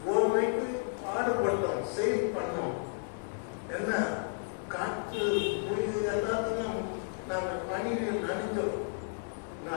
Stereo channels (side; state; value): right; silent; digital silence